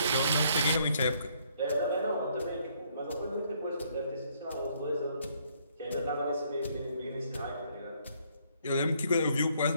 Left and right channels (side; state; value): both; inverted; correlation -0.68